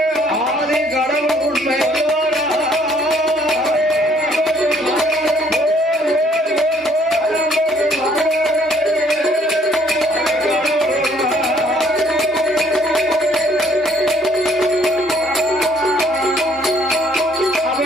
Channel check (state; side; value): normal; both; correlation 0.62